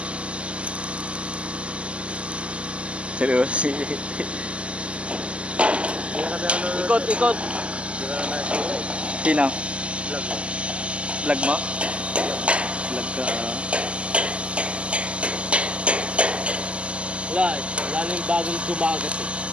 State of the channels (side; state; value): left; late; 0.055 ms